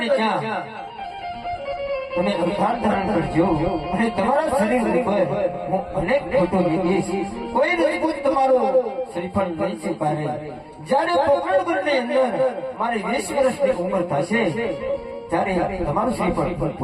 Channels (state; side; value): identical; both; correlation 1.00